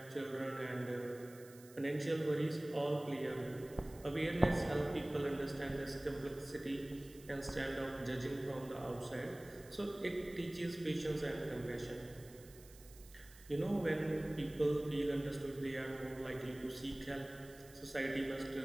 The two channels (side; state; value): right; noise; hiss, 21 dB below the sound